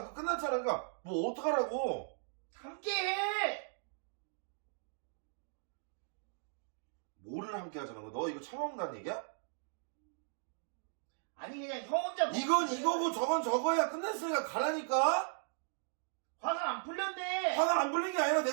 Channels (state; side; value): silent; left; digital silence